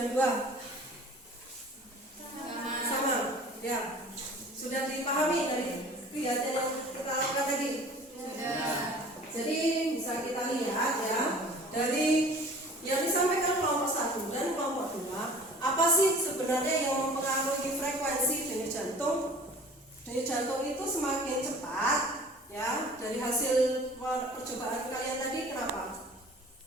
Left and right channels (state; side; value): normal; both; correlation 0.46